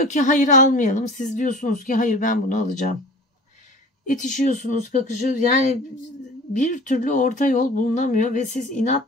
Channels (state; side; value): normal; both; correlation 0.42